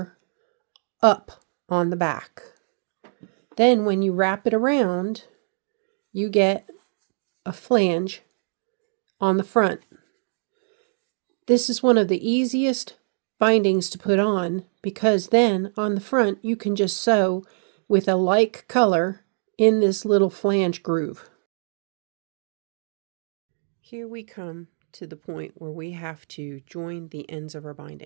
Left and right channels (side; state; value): left; silent; 62 dB below the other